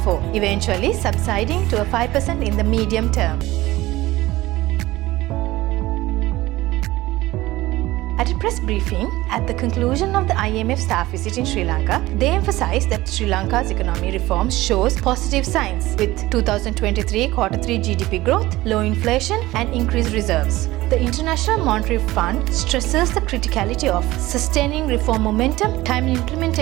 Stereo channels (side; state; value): left; quieter; 18.0 dB